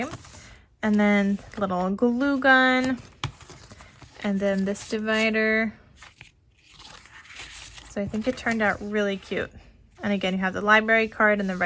and then little glue gun, and then this divider. So I think it turned out really cute. And again, you have the library card and the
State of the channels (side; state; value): both; identical; correlation 1.00